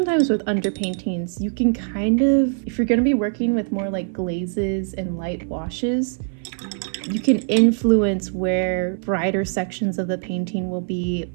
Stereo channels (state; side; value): silent; left; 57 dB below the other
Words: with underpaintings you can kind of, if you're going to be working with more like glazes and light washes, you can influence where brighter sections of the painting will be,